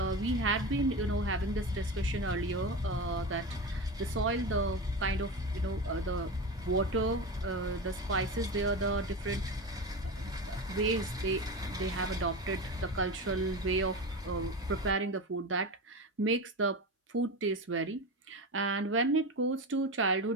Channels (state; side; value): normal; both; correlation 0.23